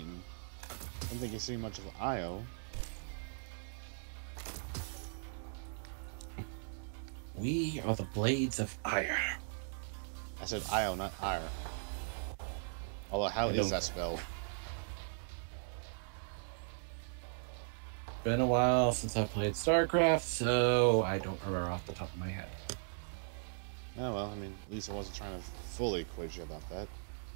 I don't think you've seen much of Io. We are the blades of ire. I said Io, not ire. Although, how is that spelled? Been a while since I played StarCraft, so I don't remember off the top of my head. Oh well, I mean, at least I wasn't trying to fully quiz you about that.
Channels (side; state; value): left; silent; digital silence